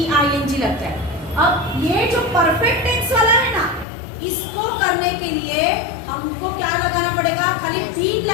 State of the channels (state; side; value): drops out; right; at 3.9 s